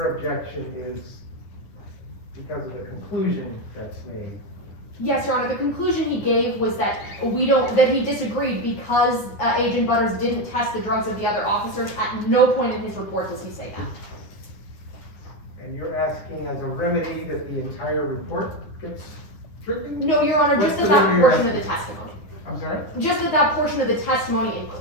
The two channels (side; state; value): right; late; 9.7 ms